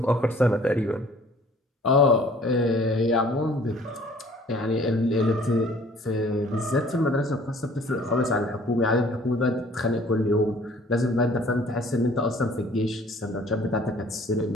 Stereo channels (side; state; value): both; normal; correlation 0.54